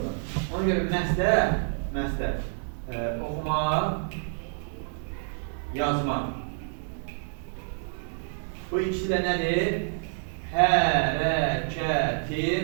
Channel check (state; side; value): silent; left; 59 dB below the other